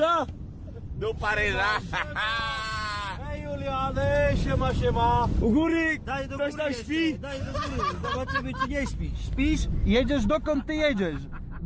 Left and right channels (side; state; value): both; identical; correlation 1.00